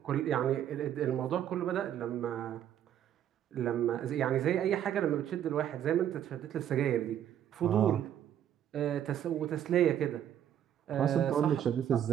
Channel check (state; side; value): quieter; left; 10.4 dB